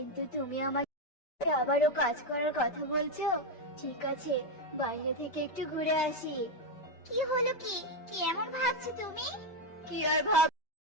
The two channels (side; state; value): right; late; 5.1 ms